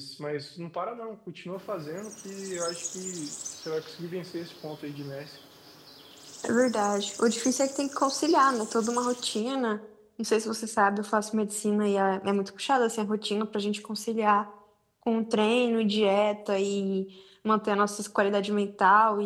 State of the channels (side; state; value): both; identical; correlation 1.00